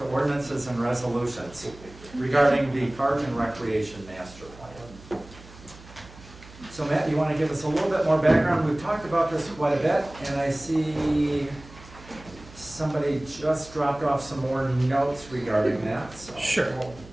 ordinances and resolutions regarding the Park and Recreation Master Plan. So Matt, you want to give us a little bit more background? We've talked about this quite a bit, and I see somebody just dropped off some more notes regarding that, so. Sure.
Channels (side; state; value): right; noise; hum, 20 dB below the sound